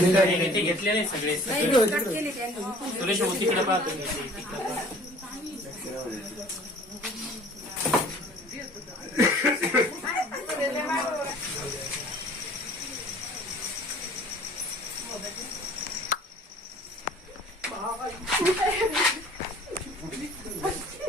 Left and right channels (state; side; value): normal; both; correlation 0.50